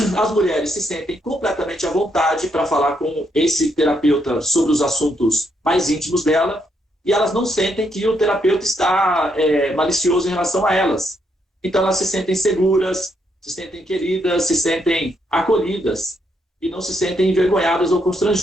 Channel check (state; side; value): normal; both; correlation 0.76